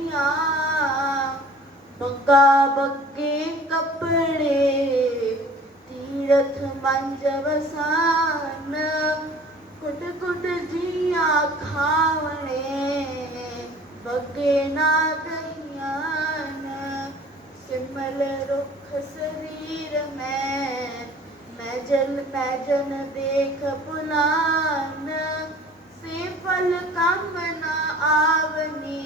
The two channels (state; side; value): normal; both; correlation 0.47